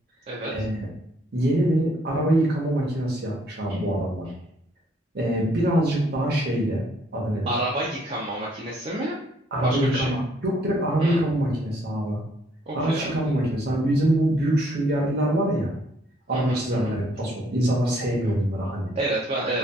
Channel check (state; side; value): normal; both; correlation 0.66